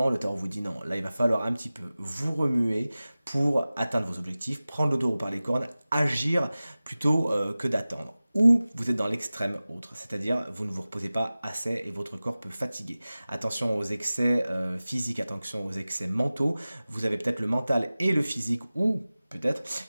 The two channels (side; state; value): both; inverted; correlation -0.97